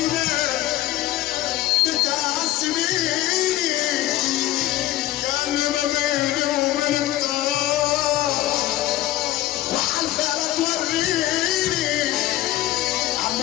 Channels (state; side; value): quieter; right; 15.3 dB